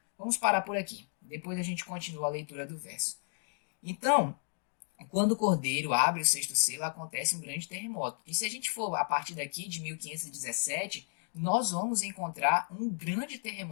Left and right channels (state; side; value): silent; right; 56 dB below the other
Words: Vamos parar por aqui. Depois a gente continua a leitura do verso. Então, quando o cordeiro abre o sexto selo, acontece um grande terremoto. E se a gente for a partir daqui de 1517, nós vamos encontrar um grande